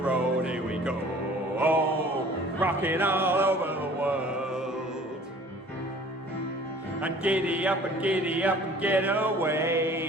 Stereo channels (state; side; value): normal; both; correlation 0.50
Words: Here we go. Oh, rocking all over the world. And giddy up and get